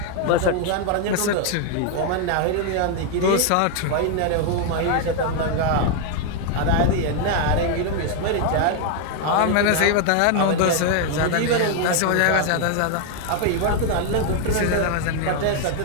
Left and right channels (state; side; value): different; both; correlation 0.01